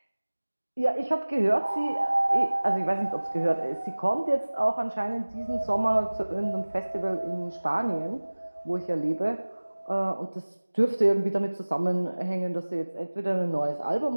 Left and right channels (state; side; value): inverted; both; correlation -1.00